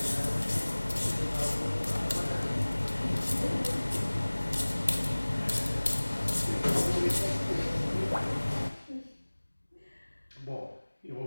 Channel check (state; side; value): inverted; both; correlation -1.00